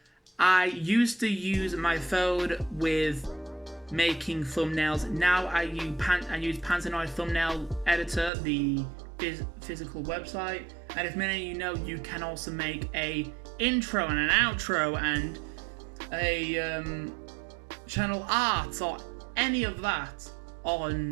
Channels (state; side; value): drops out; left; at 8.3 s